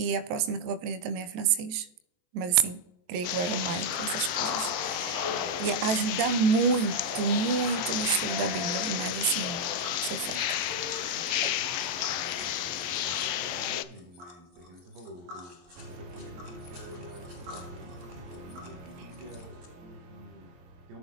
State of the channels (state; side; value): late; left; 23 ms